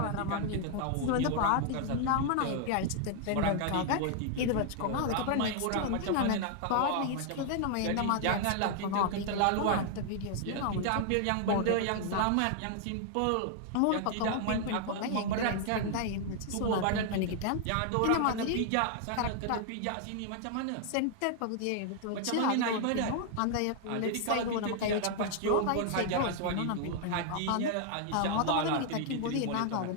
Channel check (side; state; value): both; different; correlation 0.00